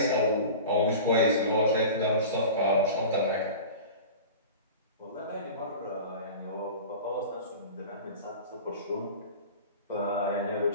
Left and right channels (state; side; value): inverted; both; correlation -0.35